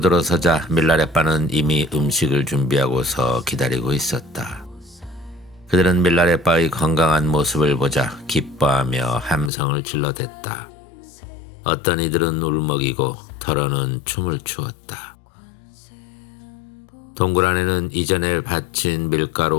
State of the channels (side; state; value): right; drops out; at 9.5 s